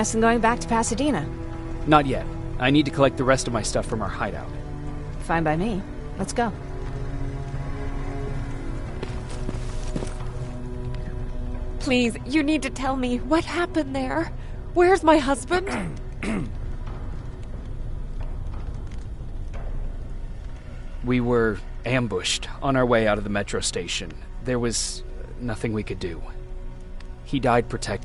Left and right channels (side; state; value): both; identical; correlation 1.00